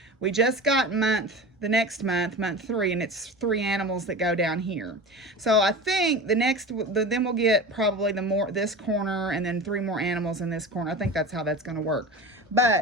We just got the next month, month 3, and it's 3 animals that go down here. So I think then we'll get probably this corner and then 3 more animals in this corner. I think that's how that's going to work.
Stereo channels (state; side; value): normal; both; correlation 0.31